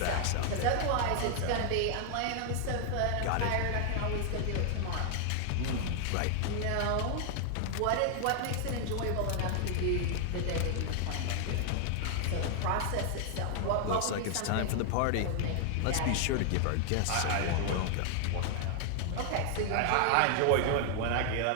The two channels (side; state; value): both; different; correlation 0.00